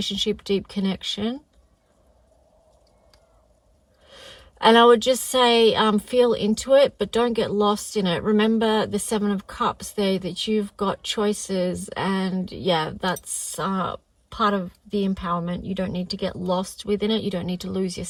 deep connection. And I would just say, feel into it, but don't get lost in it. Remember the 7 of Cups there, that you've got choices. And yeah, that's part of the empowerment. You don't need to get lost within it. You don't need to lose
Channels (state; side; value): identical; both; correlation 1.00